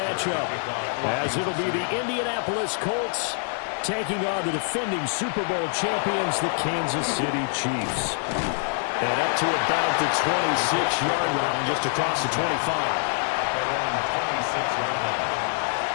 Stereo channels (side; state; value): right; silent; digital silence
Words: as it'll be the Indianapolis Colts taking on the defending Super Bowl champions, the Kansas City Chiefs. And up to about the 26-yard line, just across the 25. They're on the 26-yard line.